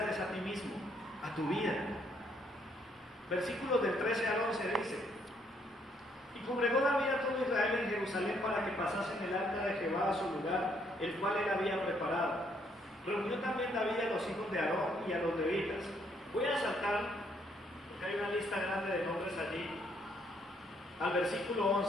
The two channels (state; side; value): normal; both; correlation 0.70